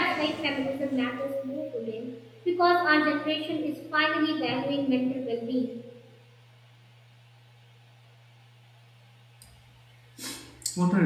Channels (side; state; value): both; identical; correlation 1.00